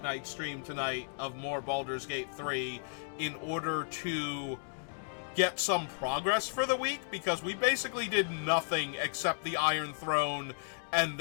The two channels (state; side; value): silent; right; digital silence